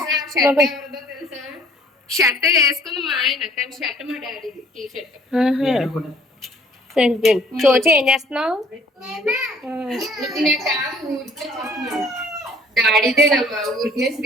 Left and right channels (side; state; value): both; normal; correlation 0.56